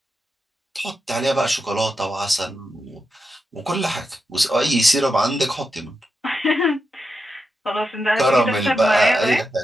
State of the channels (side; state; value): both; normal; correlation 0.88